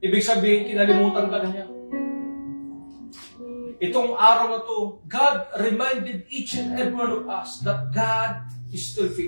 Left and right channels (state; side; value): inverted; both; correlation -1.00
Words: Ibig sabihin, kinalimutan ka na niya. Itong araw na to, God reminded each and every one of us that God is still